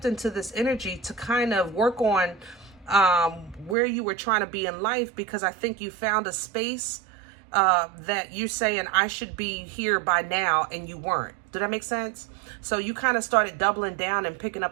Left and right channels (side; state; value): left; drops out; at 3.8 s